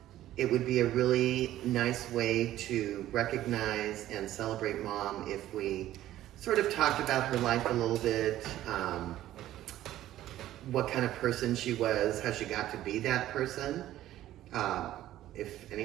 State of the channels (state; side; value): quieter; left; 13.7 dB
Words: it would be a really nice way to recognize and celebrate Mom if we sort of talked about her life a little bit, what kind of person she was, how she got to be that person, if